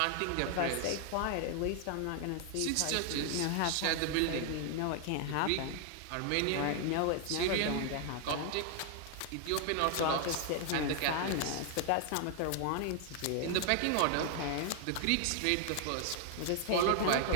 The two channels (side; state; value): both; different; correlation 0.00